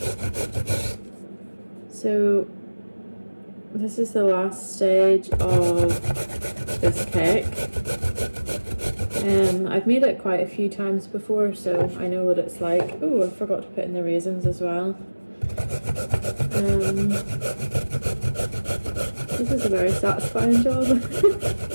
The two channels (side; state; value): both; inverted; correlation -1.00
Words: So this is the last stage of this cake. I've made it quite a few times before, so I know what it's like. Oh, I forgot to put in the raisins as well. This is a very satisfying job.